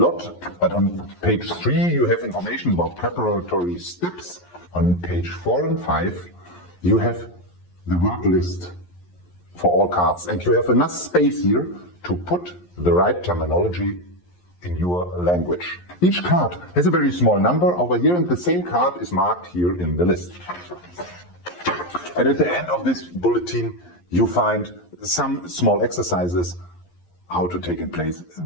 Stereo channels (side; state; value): right; late; 11 ms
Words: but on page 3 you have information about preparatory steps. On page 4 and 5 you have the word list for all cards, and you have enough space here to put the right terminology in your language. Each card has a very small number over here, and the same card is marked here in the list. And at the end of this bulletin, you find some small exercises how to take in place